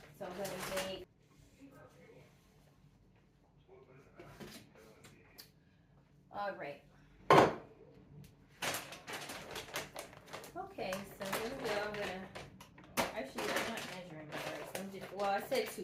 So I'm gonna make. All right. Okay, so here we go. I'm gonna. Actually, I'm not measuring my rice. I'm just. Well, I said 2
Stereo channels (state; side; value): identical; both; correlation 1.00